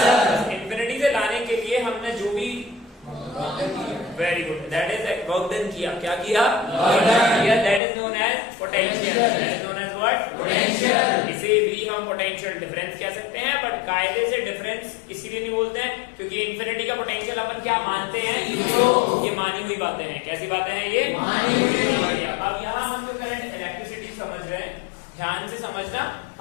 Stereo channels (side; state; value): right; drops out; at 7.8 s